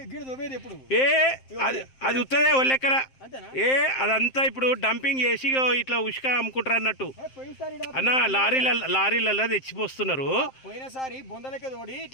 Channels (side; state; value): right; late; 7.6 ms